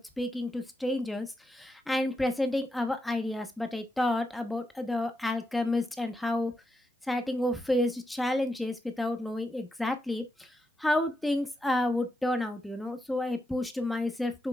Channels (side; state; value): both; normal; correlation 0.85